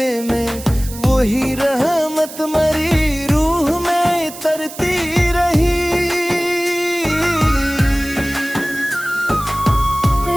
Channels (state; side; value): noise; right; hiss, 14 dB below the sound